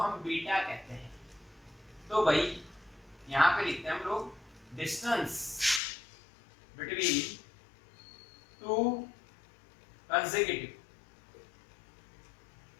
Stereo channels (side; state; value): right; drops out; at 5.8 s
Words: बीटा कहते हैं। तो भाई यहाँ पे लिखते हैं हम लोग distance between 2 consecutive